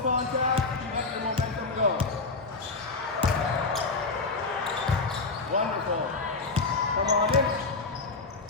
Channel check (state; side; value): quieter; right; 3.8 dB